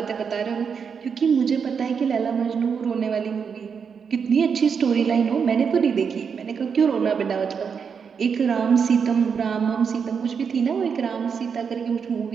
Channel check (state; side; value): quieter; left; 6.4 dB